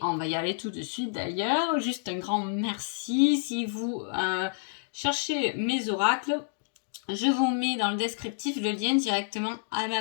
on va y aller tout de suite d'ailleurs. Juste un grand merci. Si vous cherchez mes oracles, je vous mets dans le descriptif le lien directement à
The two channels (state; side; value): silent; right; digital silence